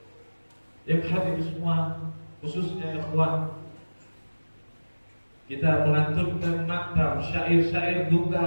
yang hadir semua, khususnya ikhwan, kita melantunkan maktam syair-syair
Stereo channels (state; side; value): inverted; both; correlation -1.00